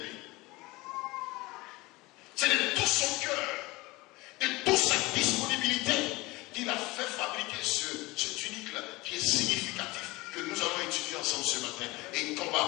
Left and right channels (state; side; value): quieter; right; 21.9 dB